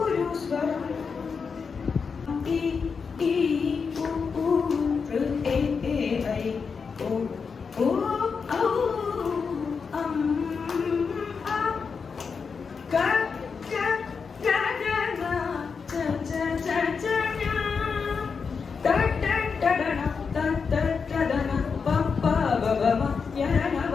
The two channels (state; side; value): quieter; right; 5.5 dB